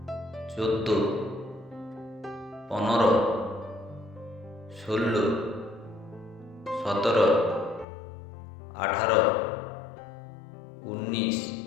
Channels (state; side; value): drops out; right; at 7.9 s